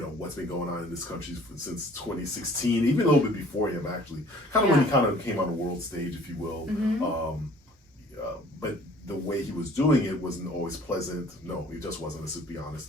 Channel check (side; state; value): both; normal; correlation 0.53